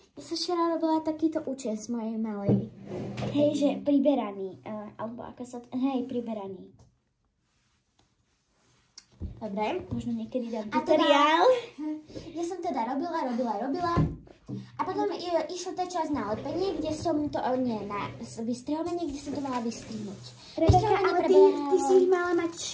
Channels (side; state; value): both; identical; correlation 1.00